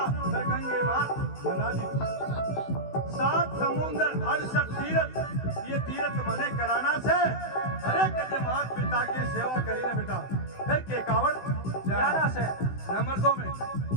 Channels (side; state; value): right; late; 16 ms